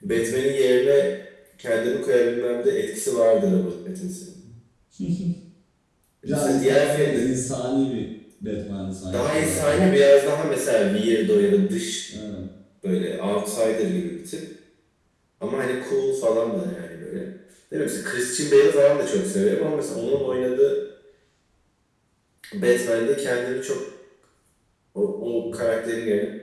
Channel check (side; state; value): both; identical; correlation 1.00